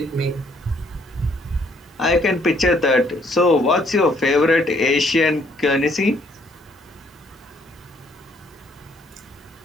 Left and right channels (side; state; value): both; normal; correlation 0.67